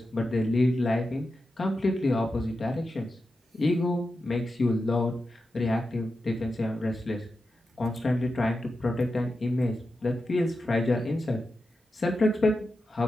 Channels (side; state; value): both; normal; correlation 0.90